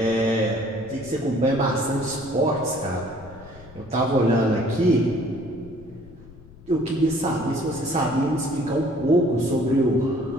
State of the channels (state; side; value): noise; left; rumble, 20 dB below the sound